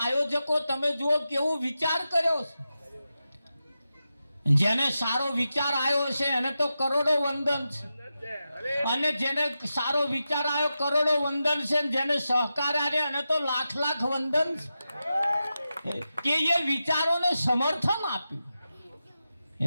આયોજકો તમે જુઓ કેવો વિચાર કર્યો છે. જેને સારો વિચાર આવ્યો છે એને તો કરોડો વંદન છે, અને જેને સારો વિચાર આવ્યો કરોડો વંદન છે, જેને સહકાર આવ્યો એને તો લાખ વંદન છે કે એ વિચારોને સમર્થન આપ્યું.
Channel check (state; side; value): inverted; both; correlation -0.91